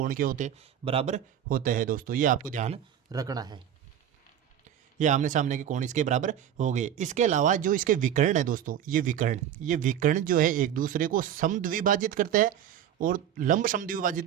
क्या होते हैं, बराबर होते हैं दोस्तों। ये आपको ध्यान रखना है, ये आमने सामने के कोण इसके बराबर हो गए। इसके अलावा जो इसके विकर्ण है दोस्तों, ये विकर्ण जो है एक दूसरे को समद्विभाजित करते हैं और लंब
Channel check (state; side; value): quieter; left; 10.0 dB